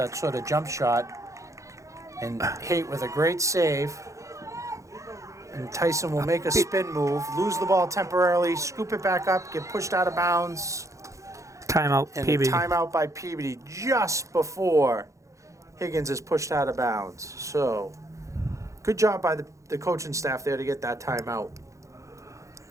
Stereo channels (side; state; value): left; late; 0.15 ms